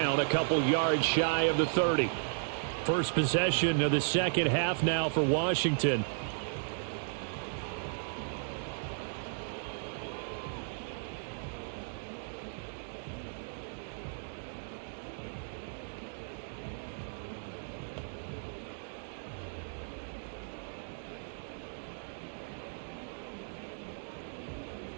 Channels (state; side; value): silent; left; digital silence